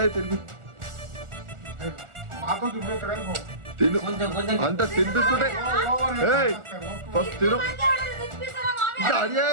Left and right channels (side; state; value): left; late; 1.4 ms